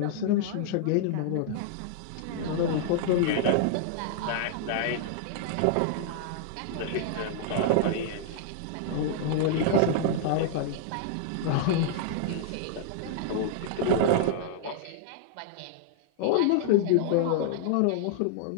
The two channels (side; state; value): both; different; correlation -0.01